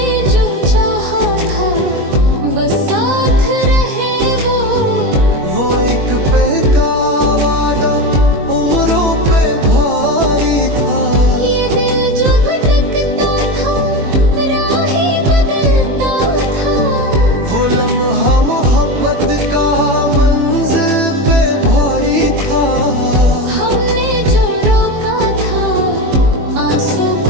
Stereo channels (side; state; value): left; late; 21 ms